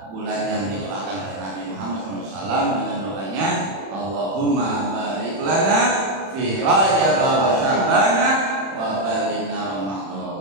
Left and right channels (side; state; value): left; late; 31 ms